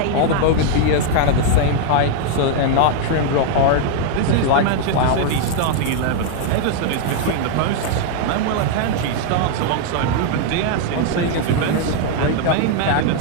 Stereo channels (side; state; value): both; different; correlation 0.00